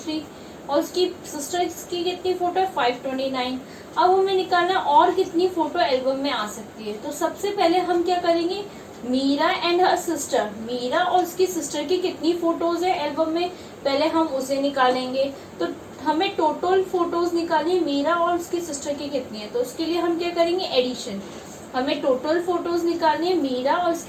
और उसकी सिस्टर की कितनी फोटो है? 529। अब हमें निकालना और कितनी फोटो एल्बम में आ सकती है। तो सबसे पहले हम क्या करेंगे? Meera and her sister, Meera और उसकी सिस्टर की कितनी फोटोज है एल्बम में, पहले हम उसे निकालेंगे। तो हमें टोटल फोटोज निकालनी है, मीरा और उसकी सिस्टर की कितनी है। तो उसके लिए हम क्या करेंगे? एडिशन। हमें टोटल फोटोज निकालनी है मीरा और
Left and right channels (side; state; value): both; identical; correlation 1.00